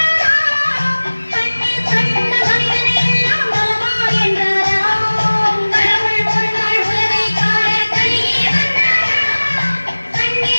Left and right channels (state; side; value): inverted; both; correlation -1.00